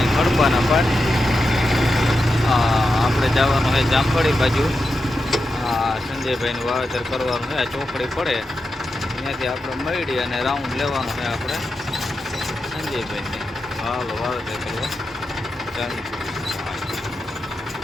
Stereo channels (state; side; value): normal; both; correlation 0.89